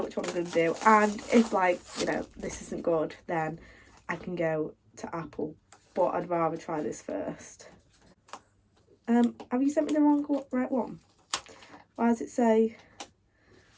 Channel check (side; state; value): both; identical; correlation 1.00